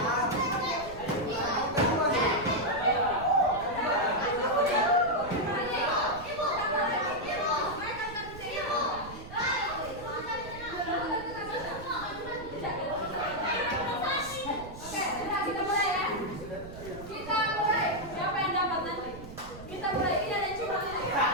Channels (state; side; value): noise; right; rumble, 14 dB below the sound